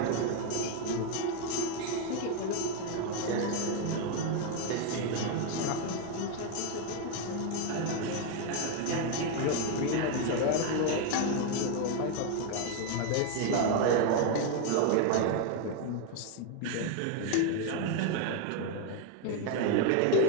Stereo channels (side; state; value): both; different; correlation 0.01